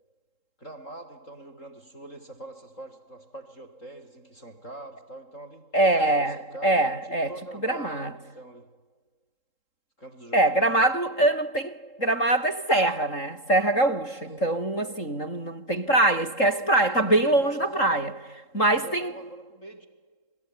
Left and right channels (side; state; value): right; late; 3.7 ms